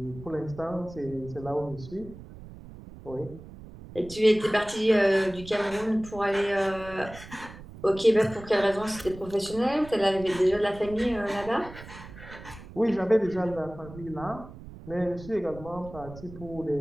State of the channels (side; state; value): right; noise; rumble, 16 dB below the sound